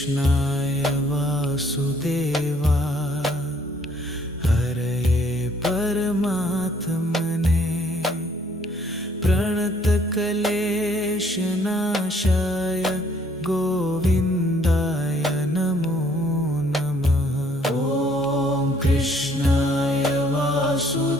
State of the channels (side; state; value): both; normal; correlation 0.63